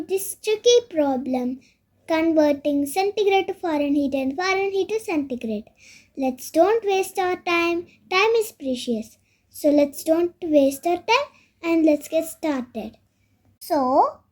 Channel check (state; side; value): identical; both; correlation 1.00